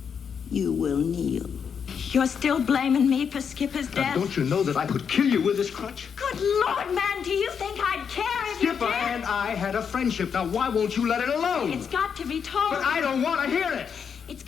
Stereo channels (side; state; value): right; quieter; 6.9 dB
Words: You will kneel. You're still blaming me for Skipper's death? Don't you know that I could kill you with this crutch? Good Lord, man, do you think I'd care if you did? Skipper and I had a friendship. Now, why won't you let it alone? It's got to be told. But I don't want to hear it. It's